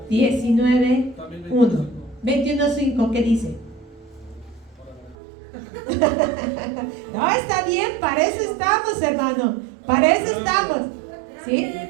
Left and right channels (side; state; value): left; drops out; at 5.2 s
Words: 19, 1. 21:5, ¿qué dice? No, está bien, para eso estamos, hermano. Para eso estamos. ¿Sí? Grande